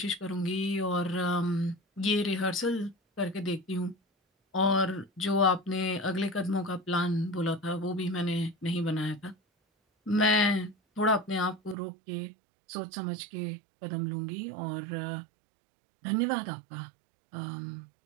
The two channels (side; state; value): left; drops out; at 11.8 s